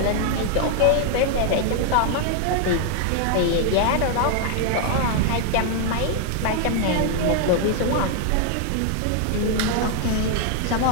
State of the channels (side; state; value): both; different; correlation 0.00